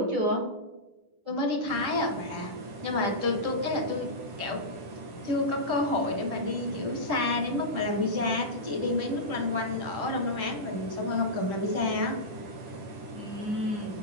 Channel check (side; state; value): left; late; 10 ms